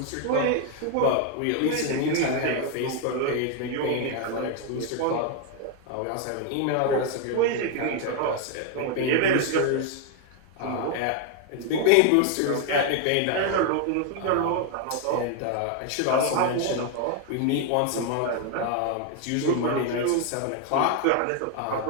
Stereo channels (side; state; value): both; different; correlation 0.01